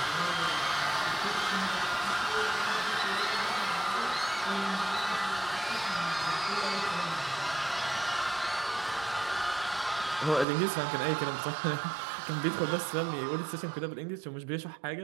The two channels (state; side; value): drops out; left; at 10.5 s